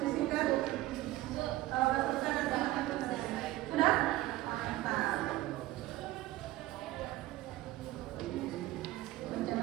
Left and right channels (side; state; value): left; quieter; 16.8 dB